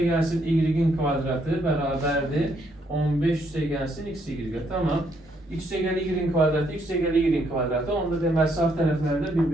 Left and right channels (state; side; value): normal; both; correlation 0.72